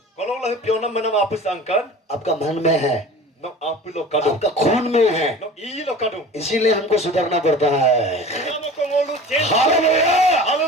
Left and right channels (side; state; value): both; normal; correlation 0.39